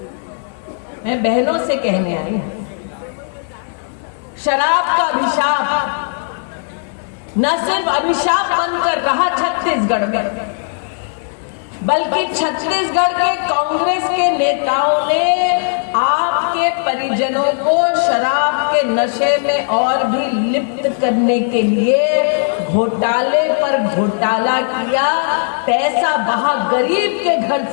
मैं बहनों से कहने आई हूं, शराब का अभिशाप न सिर्फ अभिशाप बनकर रहा छत्तीसगढ़ में, बल्कि छत्तीसगढ़ के कांग्रेस के नेताओं ने आपके परिजनों को शराब के नशे में और भी लिप्त करने के लिए घोटाले पर घोटाला किया। पैसा बहा गरीब के घर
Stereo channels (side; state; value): right; silent; digital silence